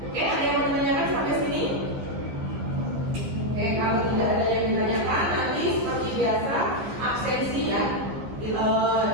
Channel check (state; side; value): late; left; 15 ms